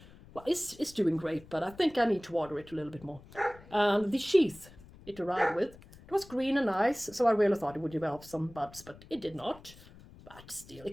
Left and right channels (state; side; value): noise; left; rumble, 21 dB below the sound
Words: Well, it's doing great, but I think I need to water it a little bit more. And the sheath it arrived with, it was green and nice, so I really thought it would develop some buds, but it did not. But still, it